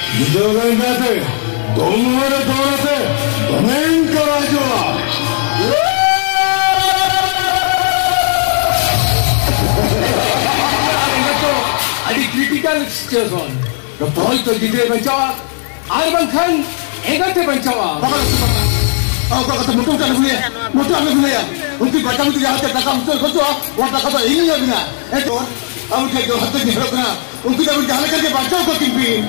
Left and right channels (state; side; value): silent; right; digital silence